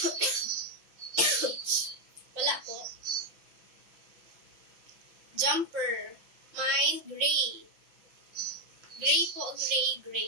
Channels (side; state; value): left; late; 5.7 ms